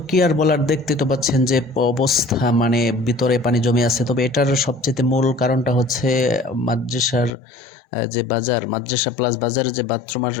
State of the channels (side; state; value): right; drops out; at 7.3 s